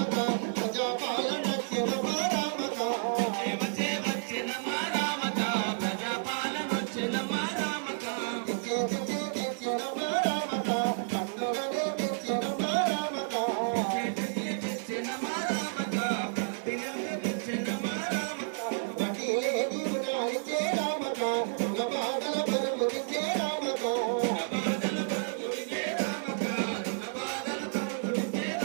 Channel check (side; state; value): left; silent; digital silence